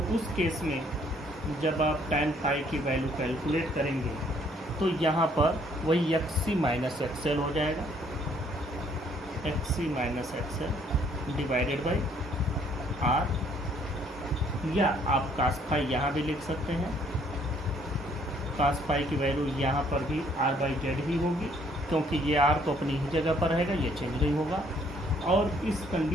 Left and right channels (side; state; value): both; normal; correlation 0.64